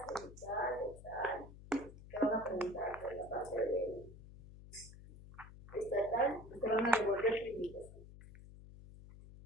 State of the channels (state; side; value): noise; left; hum, 17 dB below the sound